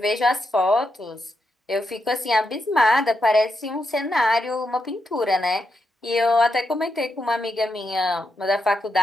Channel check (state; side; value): normal; both; correlation 0.84